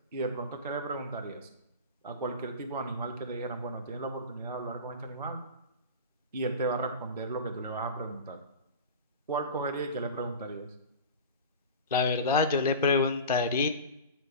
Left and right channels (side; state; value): both; inverted; correlation -0.30